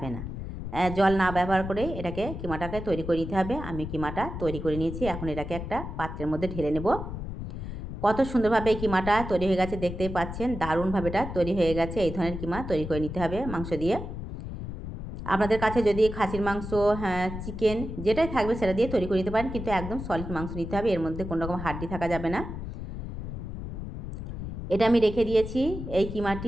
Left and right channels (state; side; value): noise; left; rumble, 7 dB below the sound